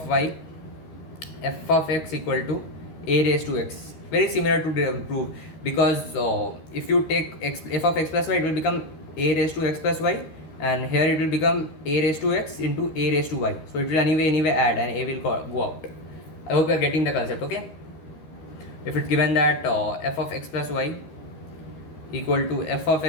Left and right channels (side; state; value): right; late; 13 ms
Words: y, f of x equal to a raised to x. Very similar to prove, because if you take f of x plus y, it will become a raised to x plus y, and here it will become a raised to x into a raised to y. So it will anyway add, and a will go out. I hope you are getting the concept. Okay, if it's given that f of x plus y equal to f of